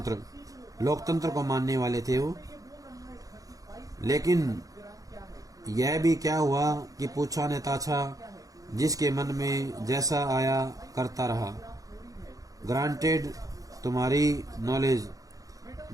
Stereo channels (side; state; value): left; late; 0.17 ms